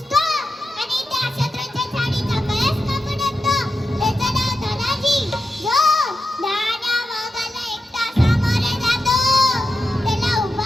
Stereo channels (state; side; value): normal; both; correlation 0.88